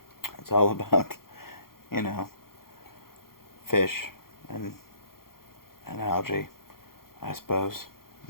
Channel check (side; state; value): right; late; 0.92 ms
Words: It's all about, fish and algae, I suppose.